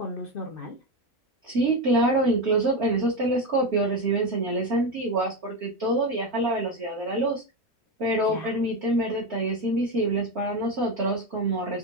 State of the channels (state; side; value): normal; both; correlation 0.14